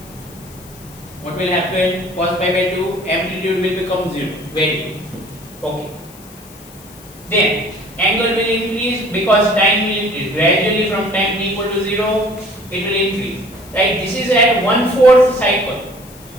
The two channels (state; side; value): noise; left; hiss, 21 dB below the sound